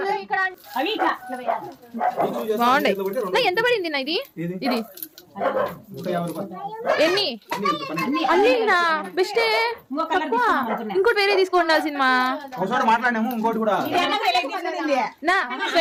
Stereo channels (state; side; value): identical; both; correlation 1.00